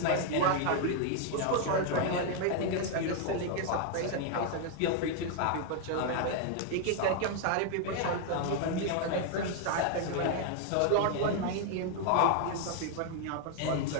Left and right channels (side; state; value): both; different; correlation 0.00